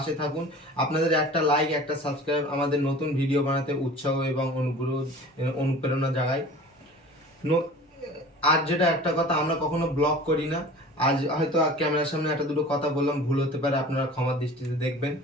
থাকুন। আপনাদের একটা লাইক, একটা সাবস্ক্রাইব আমাদের নতুন ভিডিও বানাতে উৎসাহ এবং অনুপ্রেরণা জাগায়। আজ যেটা একটা কথা, আমরা কখনো ব্লগ করি না। আজ হয়তো ক্যামেরার সামনে একটা দুটো কথা বললাম, ভুল হতে পারে, আপনারা ক্ষমার দৃষ্টিতে দেখবেন।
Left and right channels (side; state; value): both; normal; correlation 0.42